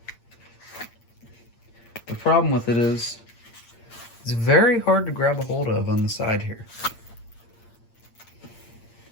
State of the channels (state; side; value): late; right; 8.7 ms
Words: The problem with it is, it's very hard to grab a hold of on the side here.